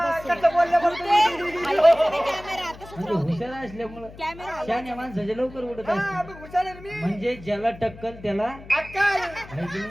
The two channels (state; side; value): noise; left; hum, 18 dB below the sound